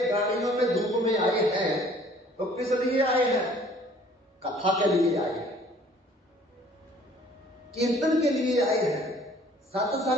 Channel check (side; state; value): both; normal; correlation 0.55